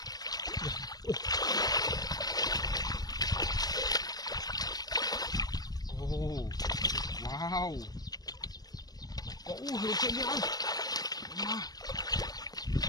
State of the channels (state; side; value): late; right; 0.19 ms